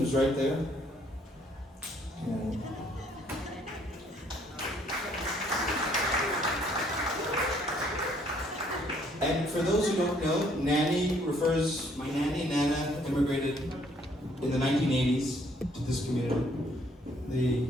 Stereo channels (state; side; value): normal; both; correlation 0.64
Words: right there. And for those who don't know, nanny refers, my nanny, Nana, immigrated in the 1980s to this community.